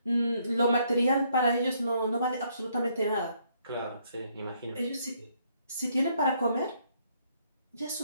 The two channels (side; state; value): both; inverted; correlation -0.70